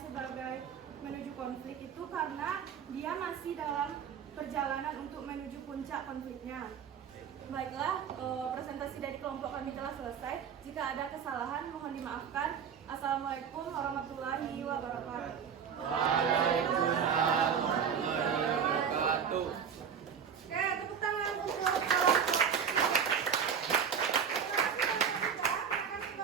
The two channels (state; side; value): quieter; left; 7.4 dB